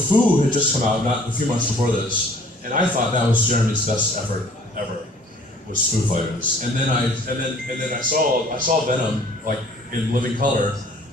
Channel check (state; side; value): normal; both; correlation 0.54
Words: had just come out not a few months before this, and I thought that was Jeremy's best effort ever, was Foo Fighters. And then I saw Venom like in living color,